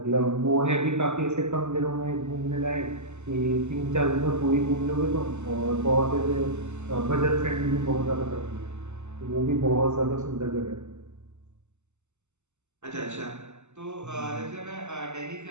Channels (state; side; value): late; left; 0.83 ms